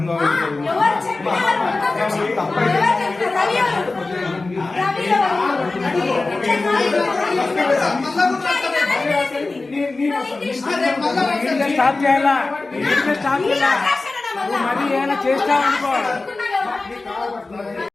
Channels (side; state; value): right; quieter; 3.4 dB